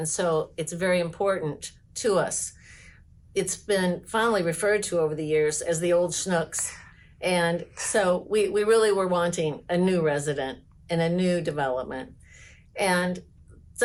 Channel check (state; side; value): identical; both; correlation 1.00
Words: so it's very important to us. It's been fondly referred to over the years as the old Schnooks. And so we really were wanting a new resident and a new development. And